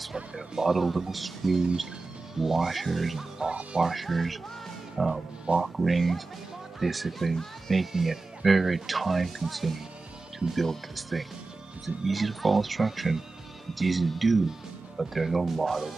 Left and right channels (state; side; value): quieter; left; 3.6 dB